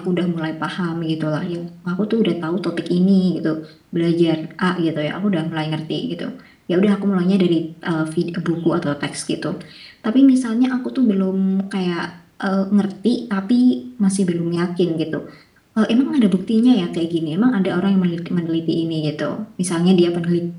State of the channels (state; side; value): identical; both; correlation 1.00